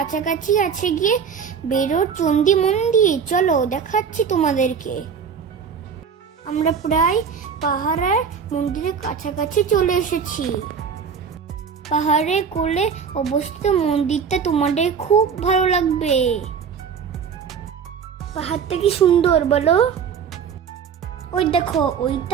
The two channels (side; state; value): left; quieter; 6.7 dB